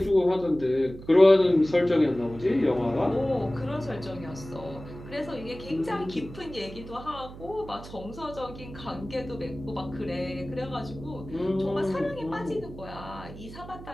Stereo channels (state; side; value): noise; right; hum, 14 dB below the sound